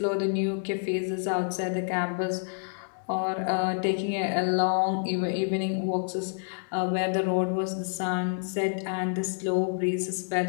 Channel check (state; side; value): silent; right; digital silence